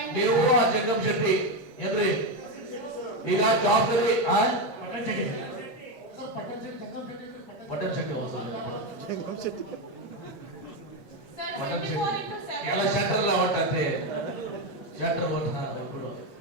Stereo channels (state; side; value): late; right; 8.4 ms